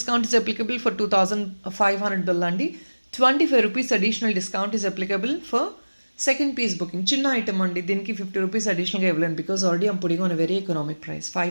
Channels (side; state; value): both; inverted; correlation -1.00